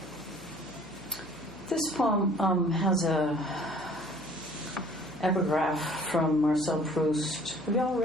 This poem has a epigraph from Marcel Proust. Have you all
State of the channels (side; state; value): left; noise; hum, 20 dB below the sound